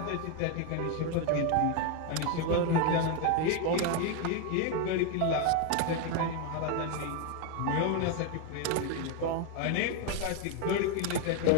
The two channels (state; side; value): different; both; correlation 0.01